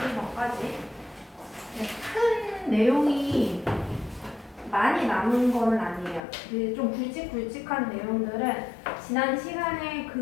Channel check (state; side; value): drops out; right; at 6.2 s